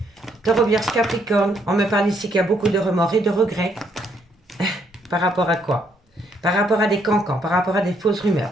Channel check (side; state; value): both; normal; correlation 0.71